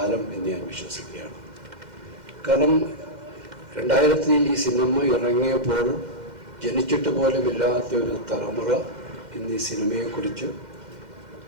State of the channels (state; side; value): late; left; 2.1 ms